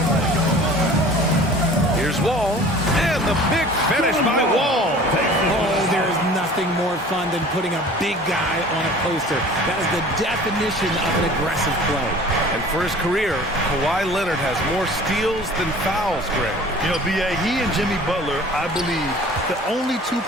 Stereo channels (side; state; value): both; normal; correlation 0.45